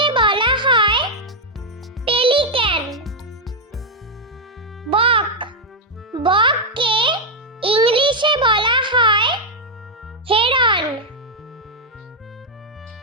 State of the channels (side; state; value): both; normal; correlation -0.01